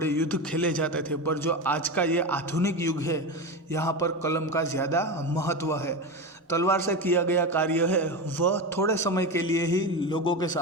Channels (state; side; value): normal; both; correlation 0.20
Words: युद्ध खेले जाते थे, पर जो आज का ये आधुनिक युग है यहाँ पर कलम का ज़्यादा महत्व है। तलवार से किया गया कार्य है वह थोड़े समय के लिए ही लोगों के